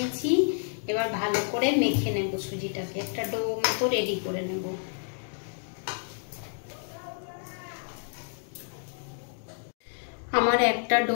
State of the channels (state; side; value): silent; right; digital silence